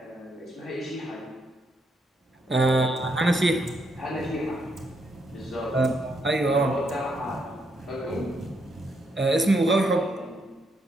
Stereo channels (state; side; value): normal; both; correlation 0.76